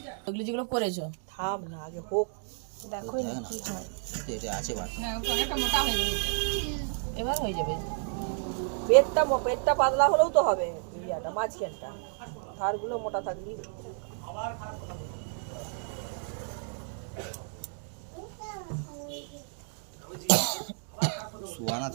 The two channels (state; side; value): silent; left; 57 dB below the other